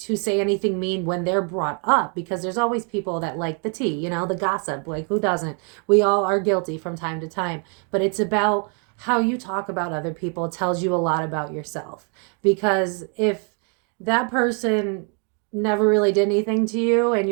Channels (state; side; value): quieter; left; 38.9 dB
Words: say anything mean when they're brought up, because there's always people that like the tea, you know, the gossip. Like, who doesn't? We all are guilty from time to time. But it's about how you talk about other people tells you a lot about yourself. Because if that person never really did anything to you and